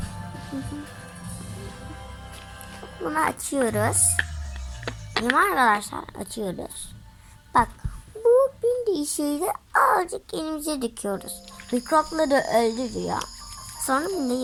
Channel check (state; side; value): identical; both; correlation 1.00